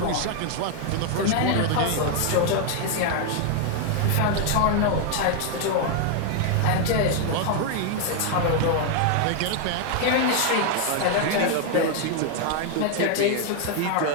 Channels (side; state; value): both; different; correlation 0.00